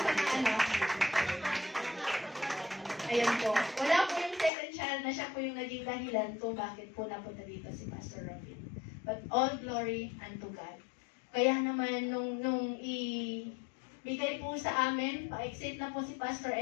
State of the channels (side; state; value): right; drops out; at 4.5 s